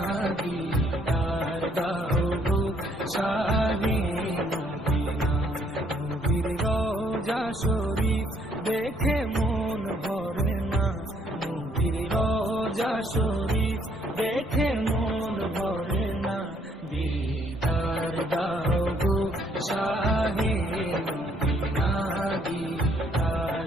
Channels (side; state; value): both; normal; correlation 0.67